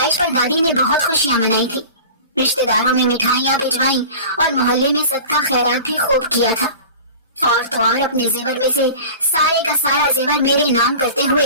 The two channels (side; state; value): both; inverted; correlation -0.38